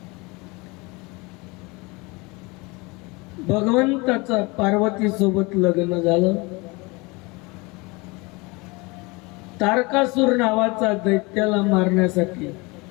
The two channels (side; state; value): right; quieter; 25.9 dB